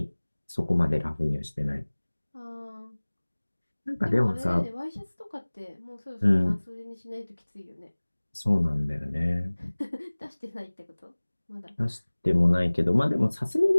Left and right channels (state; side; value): inverted; both; correlation -1.00